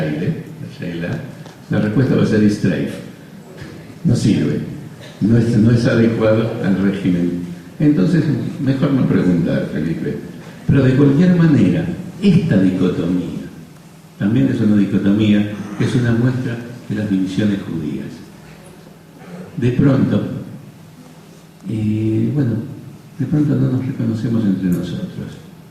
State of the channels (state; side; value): identical; both; correlation 1.00